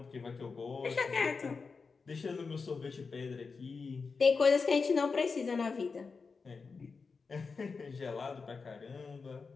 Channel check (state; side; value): quieter; right; 4.8 dB